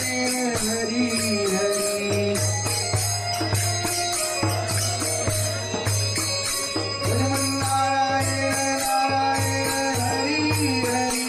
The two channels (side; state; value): both; identical; correlation 1.00